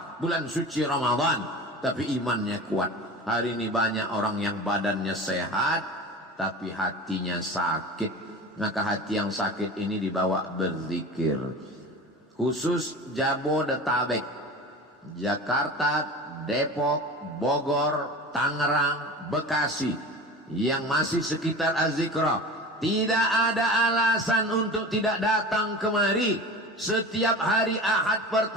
bulan suci Ramadan, tapi imannya kuat. Hari ini banyak orang yang badannya sehat tapi hatinya sakit. Maka hati yang sakit ini dibawa berzikir. Khusus Jabodetabek, Jakarta, Depok, Bogor, Tangerang, Bekasi yang masih sekitar Az-Zikra, tidak ada alasan untuk tidak datang kemari setiap hari Ahad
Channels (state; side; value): normal; both; correlation 0.34